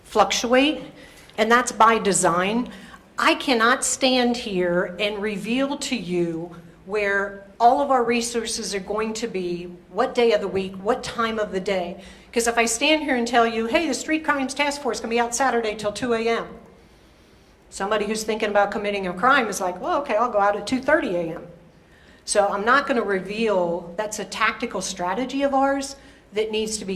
fluctuate, and that's by design. I cannot stand here and reveal to you where all of our resources are going to be, what day of the week, what time of the day. Because if I stand here and tell you, hey, the Street Crimes Task Force can be out Saturday till 2 a.m., somebody who's thinking about committing a crime is like, well, okay, I'll go out at 2:30 a.m. So I'm not going to reveal. That's a tactical strategy of ours that needs to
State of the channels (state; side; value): identical; both; correlation 1.00